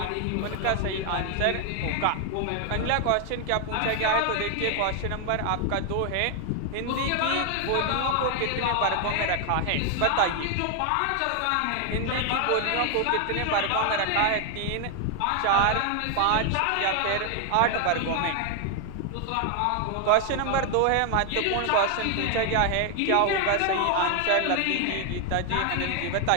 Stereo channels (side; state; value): both; different; correlation 0.00